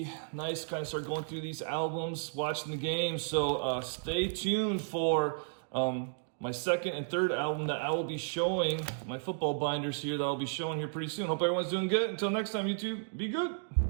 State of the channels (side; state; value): left; silent; digital silence